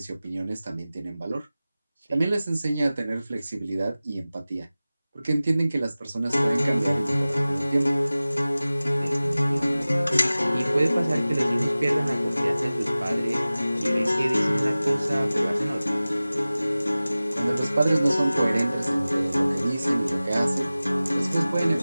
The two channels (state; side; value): inverted; both; correlation -0.97